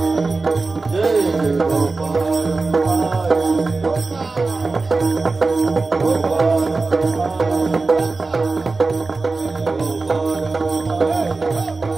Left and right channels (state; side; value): quieter; left; 3.7 dB